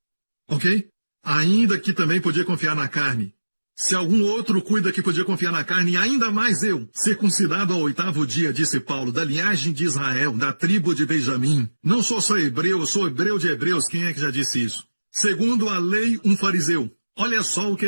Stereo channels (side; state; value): both; inverted; correlation -1.00